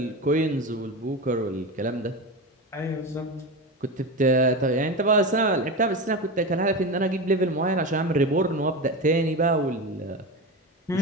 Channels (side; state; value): both; normal; correlation 0.22